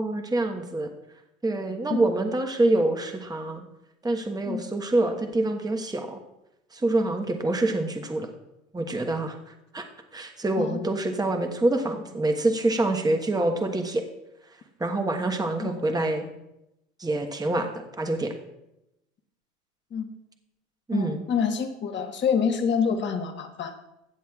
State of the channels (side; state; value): both; normal; correlation 0.76